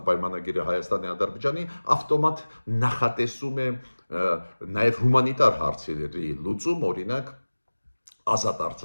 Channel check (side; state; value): both; inverted; correlation -1.00